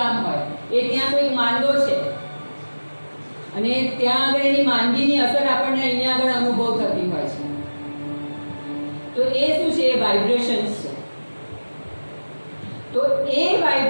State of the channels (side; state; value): both; inverted; correlation -1.00